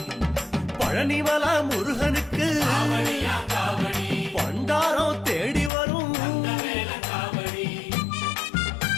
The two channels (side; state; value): right; drops out; at 5.7 s